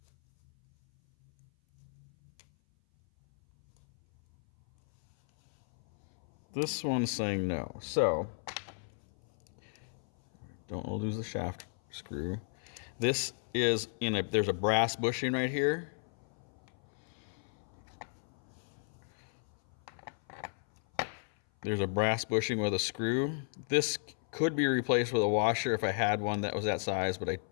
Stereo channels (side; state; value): right; silent; 55 dB below the other